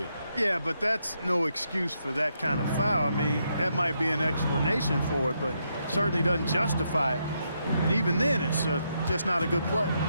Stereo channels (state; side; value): inverted; both; correlation -0.79